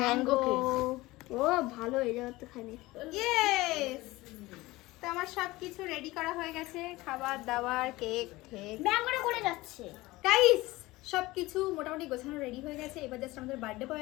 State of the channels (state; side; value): quieter; right; 19.7 dB